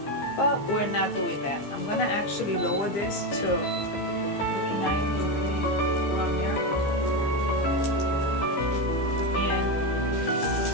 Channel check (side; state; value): right; late; 15 ms